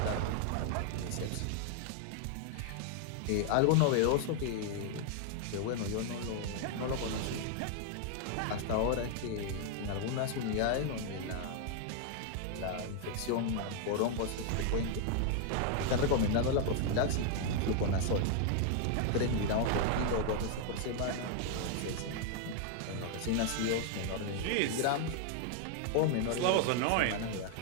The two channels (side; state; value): both; different; correlation 0.00